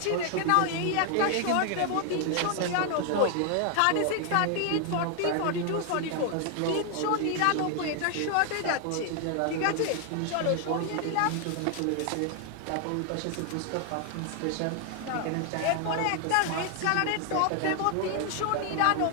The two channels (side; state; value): both; different; correlation 0.00